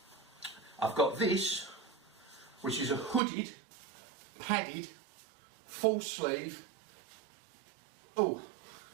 I've got this, which is a hooded, padded, full sleeve, kind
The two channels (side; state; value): left; drops out; at 3.2 s